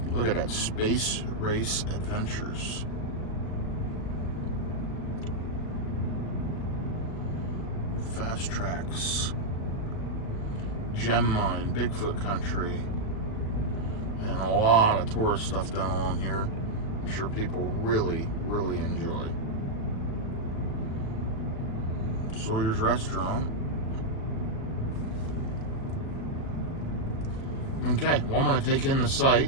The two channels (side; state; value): right; late; 37 ms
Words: look at that, Space Race Adventures. Fast Tracks. Gem Mine, Bigfoot Country. And a lot of tourist stuff down along here. I'm sure people really, really enjoy. Sawyer's Restaurant. Okay, well, I'm going to take in the